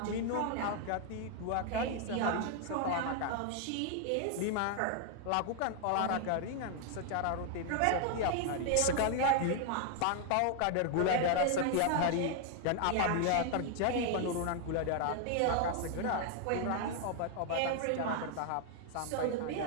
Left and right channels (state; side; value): different; both; correlation 0.00